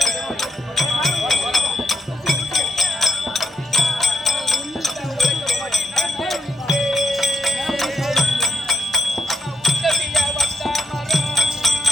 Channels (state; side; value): normal; both; correlation 0.77